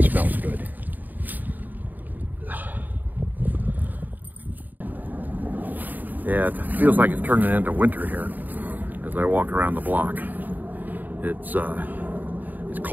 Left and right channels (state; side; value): late; left; 0.086 ms